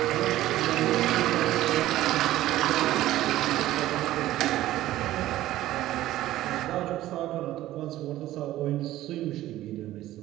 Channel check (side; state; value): left; quieter; 14.8 dB